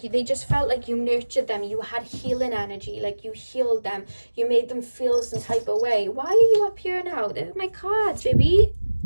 they just felt like you nurtured them. You had healing energy. Like, you healed them. You made them feel some type of way. Why are you up here now? They're my cards, baby.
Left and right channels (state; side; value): inverted; both; correlation -1.00